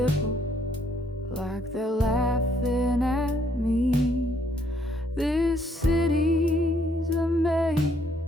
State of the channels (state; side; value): normal; both; correlation 0.69